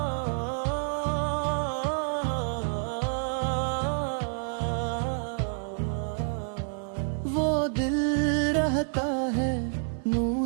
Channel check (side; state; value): left; silent; 56 dB below the other